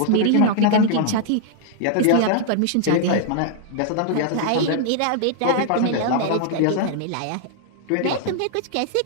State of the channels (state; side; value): different; both; correlation -0.01